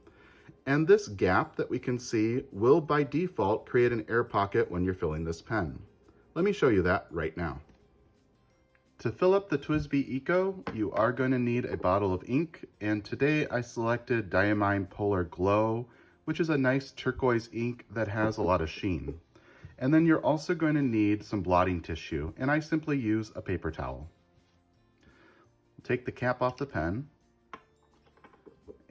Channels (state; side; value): identical; both; correlation 1.00